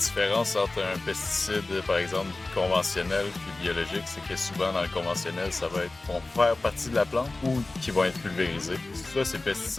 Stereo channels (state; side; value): quieter; right; 3.1 dB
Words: entre un pesticide, par exemple, conventionnel puis biologique, c'est que souvent dans le conventionnel, ça va être vont faire partie de la plante ou qui vont être pulvérisés. Ça, ces